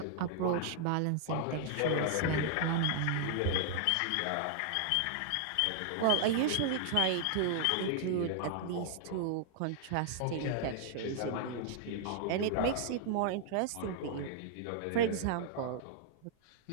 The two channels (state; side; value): different; both; correlation -0.01